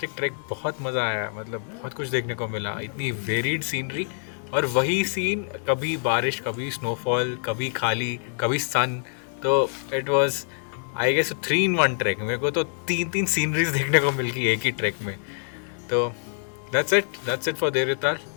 trek. बहुत मज़ा आया, मतलब बहुत कुछ देखने को मिला, इतनी वेरिड सीनरी और वही सीन, कभी बारिश, कभी स्नोफॉल, कभी खाली, कभी सन। तो it was I guess 3-in-1 trek. मेरे को तो 3 सीनरीज देखने को मिल गई एक ही ट्रैक में। तो that's it for Devtal.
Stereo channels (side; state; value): right; silent; 61 dB below the other